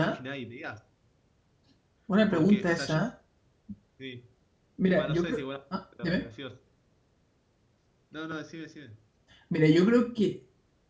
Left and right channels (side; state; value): both; identical; correlation 1.00